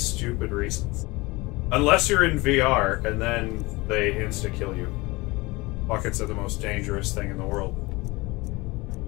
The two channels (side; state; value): right; quieter; 22.9 dB